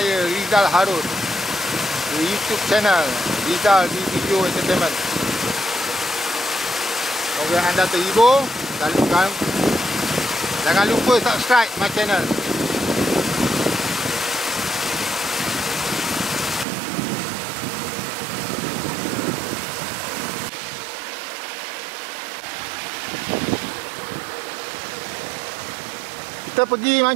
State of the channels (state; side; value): drops out; left; at 16.7 s